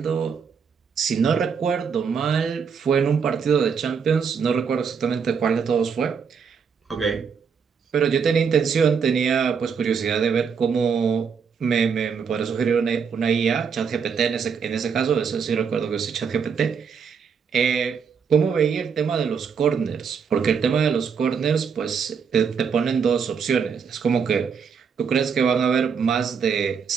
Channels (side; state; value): left; quieter; 6.4 dB